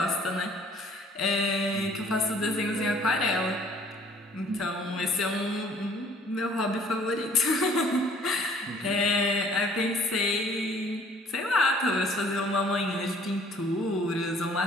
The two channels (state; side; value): normal; both; correlation 0.57